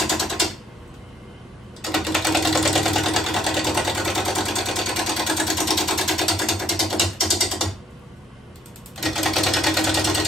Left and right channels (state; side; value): normal; both; correlation 0.68